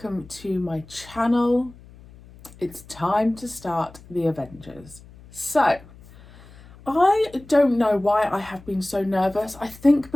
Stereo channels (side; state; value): left; noise; hum, 22 dB below the sound